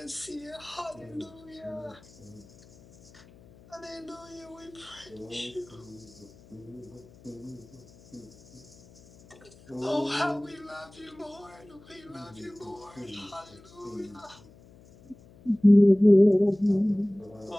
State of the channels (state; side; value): noise; left; hum, 24 dB below the sound